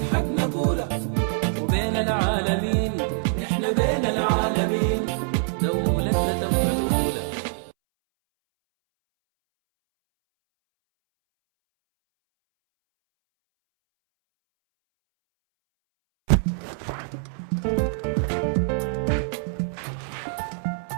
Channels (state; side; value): silent; left; 62 dB below the other